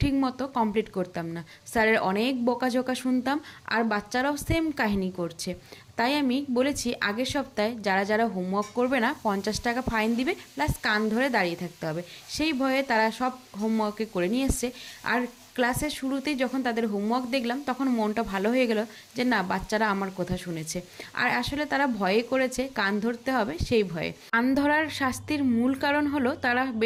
ঠিক মতো কমপ্লিট করতাম না, স্যারের অনেক বকাঝকা শুনতাম, আর বাচ্চারাও সেম কাহিনী করছে। তাই আমি বলেছি আগের সপ্তাহে যারা যারা হোমওয়ার্ক করবে না 50 টাকা ফাইন দিবে, প্লাস কান ধরে দাঁড়িয়ে থাকতে হবে। সেই ভয়ে তারা সব হোমওয়ার্কে করে নিয়ে এসছে। আর ক্লাসের শুরুতেই যখন তাদের হোমওয়ার্ক দেখলাম তখন মনটা ভালো হয়ে গেল যে না, বাচ্চারা আমার কথা শুনেছে। আর আসলে তারা ভয়ে করেছে, কান ধরতে হবে সেই ভয়ে। কান ধরার শাস্তির মূল কারণ হলো তারা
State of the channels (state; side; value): identical; both; correlation 1.00